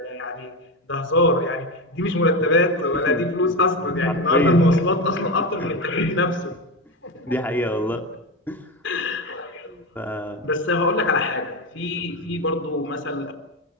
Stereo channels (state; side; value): normal; both; correlation 0.17